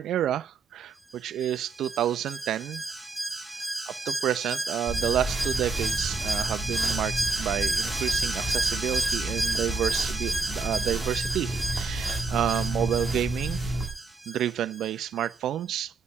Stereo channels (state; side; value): quieter; left; 4.8 dB